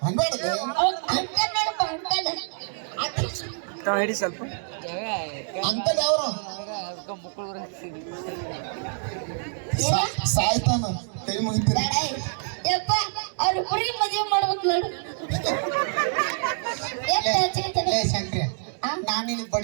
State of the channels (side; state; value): left; silent; digital silence